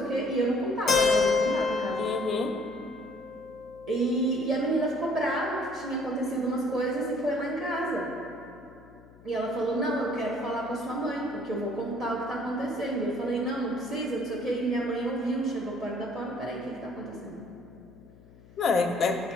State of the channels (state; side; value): noise; left; hum, 23 dB below the sound